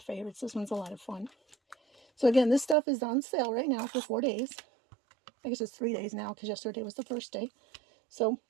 This one's a lot of fun. So again, this stuff is on sale right now for 4 days. I guess it's 3 days now because yesterday was the first day. So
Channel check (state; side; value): drops out; left; at 2.8 s